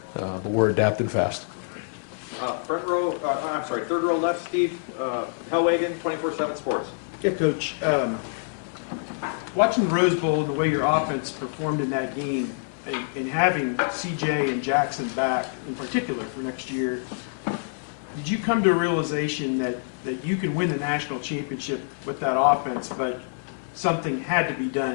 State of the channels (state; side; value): silent; right; digital silence